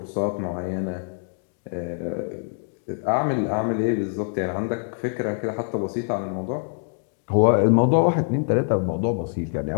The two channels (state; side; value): silent; right; digital silence